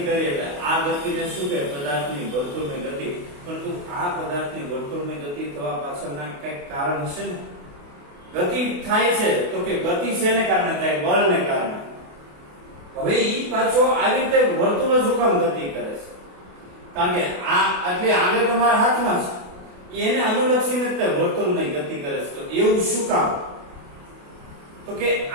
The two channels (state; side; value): late; left; 28 ms